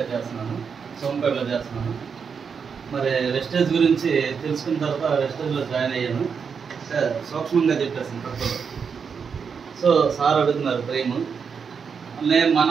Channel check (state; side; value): quieter; left; 6.2 dB